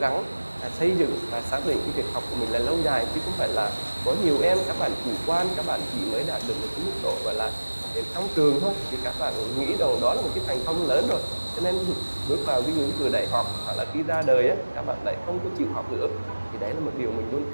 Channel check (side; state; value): both; inverted; correlation -1.00